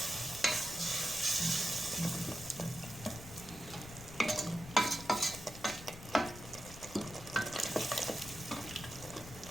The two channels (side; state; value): left; noise; rumble, 14 dB below the sound